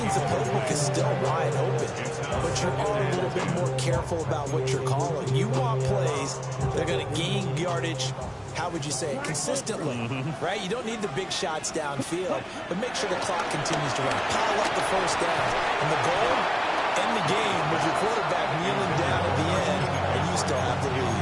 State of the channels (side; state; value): both; identical; correlation 1.00